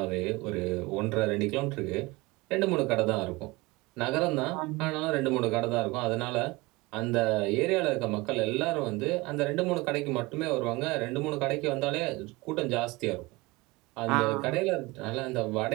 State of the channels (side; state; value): left; quieter; 22.5 dB